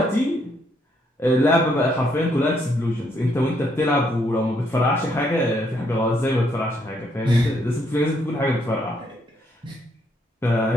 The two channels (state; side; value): normal; both; correlation 0.73